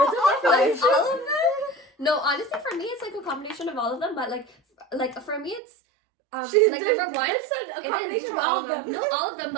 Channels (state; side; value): drops out; left; at 5.6 s